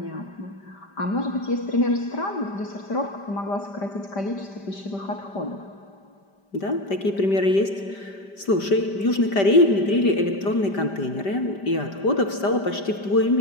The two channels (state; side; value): late; right; 5.1 ms